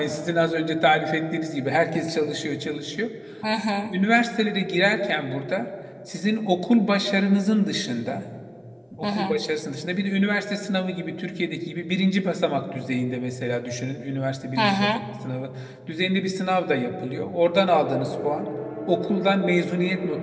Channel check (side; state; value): both; identical; correlation 1.00